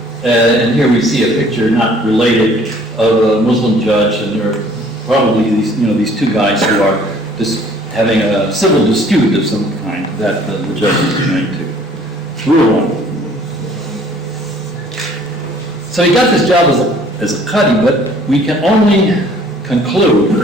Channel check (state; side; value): normal; both; correlation 0.56